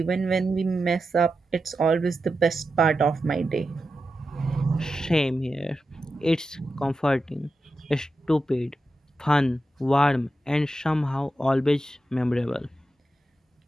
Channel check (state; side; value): normal; both; correlation 0.90